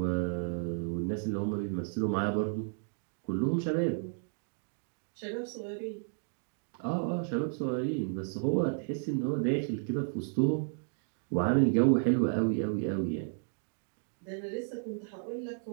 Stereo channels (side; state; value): left; silent; digital silence